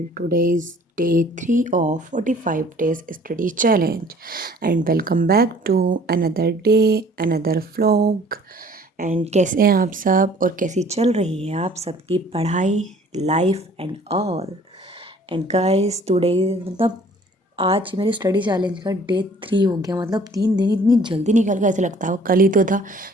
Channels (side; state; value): both; normal; correlation 0.54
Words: Today is day 3 of 45 days study challenge and welcome back to another day, another vlog. And कैसे हैं आप सब और कैसी चल रही है आप सबकी पढ़ाई, life and all. And guys today मतलब आज मेरे स्टडी चैलेंज का डे 3 हो गया। मतलब 3 दिन इतनी जल्दी निकल गया, ऐसा लगता है वो कल ही तो था